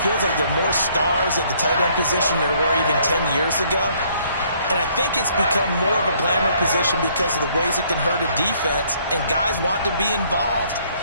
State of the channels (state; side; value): inverted; both; correlation -0.64